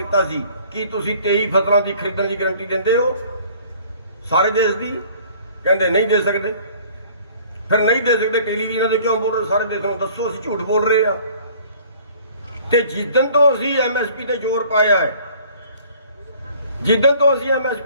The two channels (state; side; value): inverted; both; correlation -0.53